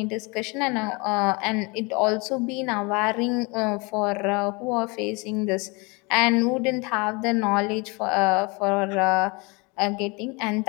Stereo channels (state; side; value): quieter; right; 28.3 dB